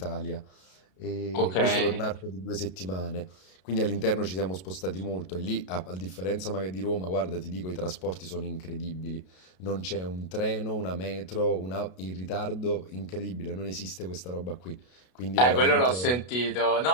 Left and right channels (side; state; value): right; late; 32 ms